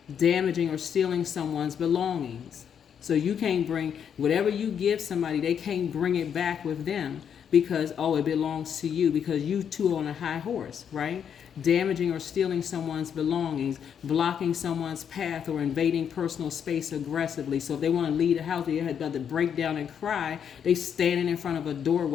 Damaging or stealing someone's belongings. So you can't bring, whatever you give somebody, they can't bring it back with them. Because, it belongs to you, because you two are on a high horse, right? Damaging or stealing someone's belongings, blocking someone's path, or invading personal space aggressively. So if they want to leave the house, they had to break down and cry, they standing in front of a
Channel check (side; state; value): right; quieter; 8.0 dB